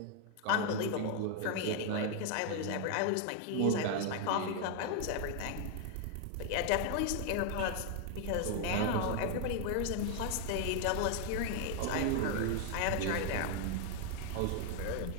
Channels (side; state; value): both; different; correlation 0.00